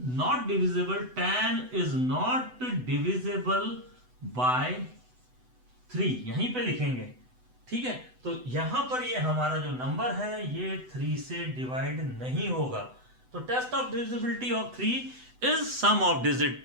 divisible, 10 is not divisible by 3, यहीं पे लिखेंगे। ठीक है, तो यहां पर ये हमारा जो नंबर है ये 3 से डिवाइड नहीं होगा। तो test of divisibility of 3 is sum of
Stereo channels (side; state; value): left; late; 8.0 ms